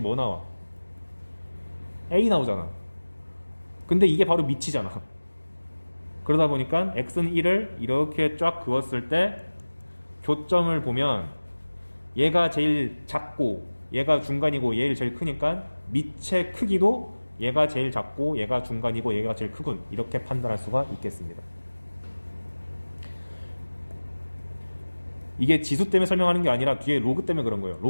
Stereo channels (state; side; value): inverted; both; correlation -1.00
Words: 나와? a 나오잖아. 근데 이게 바로 밑이잖아. 그러다 보니까 x는 1을 이렇게 쫙 그었을 때 교점을 보면 얘가 제일 작고 얘가 중간이고 얘를 제일 크니까 밑의 크기도 얘가 제일 작고 얘가 중간이고 얘가 제일 크군 이렇게 판단할 수가 있겠습니다. 이게 지수 때문에 설명하는 게 아니라 뒤에 로그 때문에 그런 거예요.